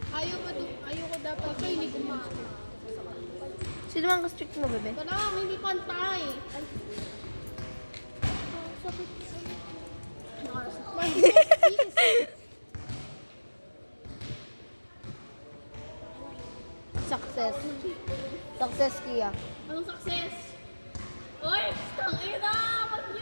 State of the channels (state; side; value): inverted; both; correlation -1.00